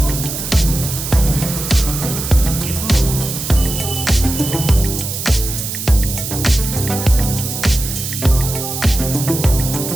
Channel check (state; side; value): noise; right; hiss, 5 dB below the sound